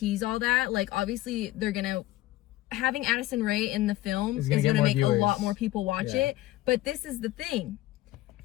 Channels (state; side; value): quieter; right; 16.6 dB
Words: All That. Like obviously, they're gonna having Addison Rae in the film It's is gonna get gonna more make viewers. a lot more people watch Yeah. it. But this is the thing.